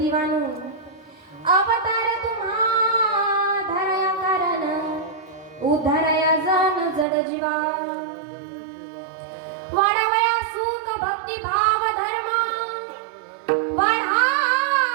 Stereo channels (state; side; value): drops out; left; at 7.1 s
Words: अवतार तुम्हा धरया कारण उद्धारया जन जड जीवा वाढवया सुख भक्ती भाव धर्म